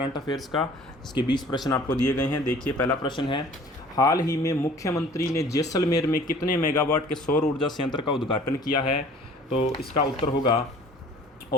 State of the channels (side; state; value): both; normal; correlation 0.50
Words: अफेयर्स का, इसके 20 प्रश्न आपको दिए गए हैं। देखिए, पहला प्रश्न है, हाल ही में मुख्यमंत्री ने जैसलमेर में कितने मेगावाट के सौर ऊर्जा संयंत्र का उद्घाटन किया है? तो इसका उत्तर होगा